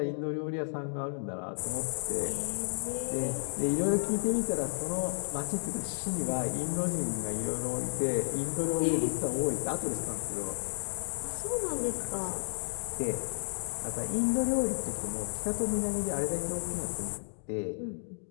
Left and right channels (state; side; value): silent; right; digital silence